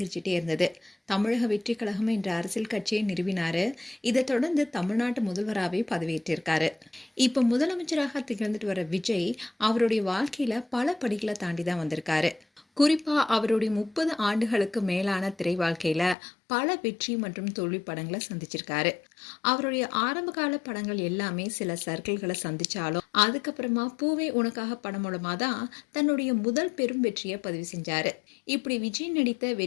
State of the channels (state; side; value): drops out; right; at 16.2 s